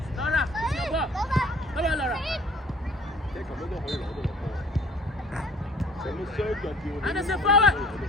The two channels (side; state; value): both; normal; correlation 0.52